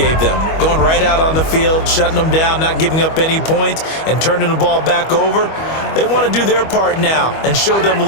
them? Going right out on the field, shutting them down, not giving up any points, and turning the ball back over. They want to do their part now and show them a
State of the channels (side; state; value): right; late; 25 ms